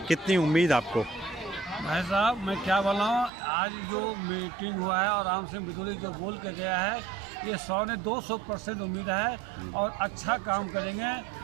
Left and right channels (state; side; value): drops out; left; at 3.3 s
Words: कितनी उम्मीद आपको? भाई साहब मैं क्या बोलाऊँ, आज जो मीटिंग हुआ है और राम सिंह विधूड़ी जो बोल के गया है, ये 100 ने 200% उम्मीद है और अच्छा काम करेंगे